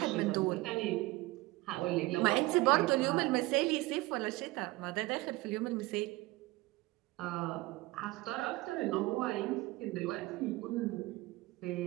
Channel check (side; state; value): left; quieter; 20.7 dB